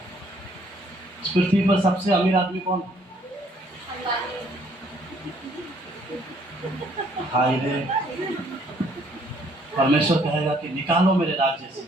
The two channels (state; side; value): normal; both; correlation 0.64